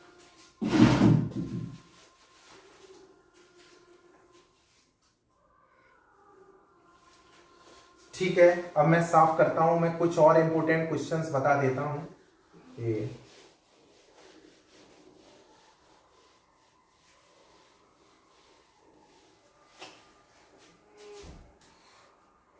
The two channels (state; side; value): identical; both; correlation 1.00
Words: ठीक है, अब मैं साफ करता हूं, मैं कुछ और इंपॉर्टेंट क्वेश्चंस बता देता हूं कि